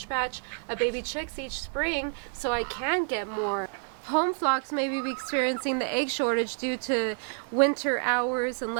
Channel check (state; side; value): silent; left; 59 dB below the other